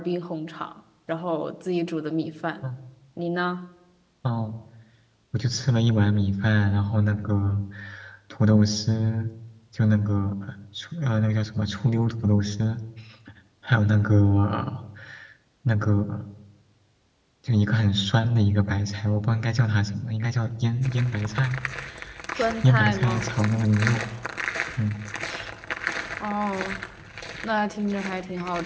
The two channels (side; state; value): both; identical; correlation 1.00